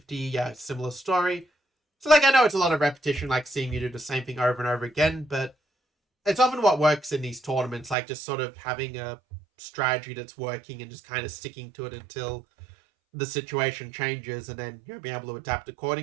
yeah, similar story. So, like, I know it's a lot of repetition, like seeing you do the same thing over and over again, but it's often what works in these tournaments, like just sort of having a strategy that's working and just kind of sticking to it until the situation changes and then, you know, being able to adapt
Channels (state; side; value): drops out; left; at 8.0 s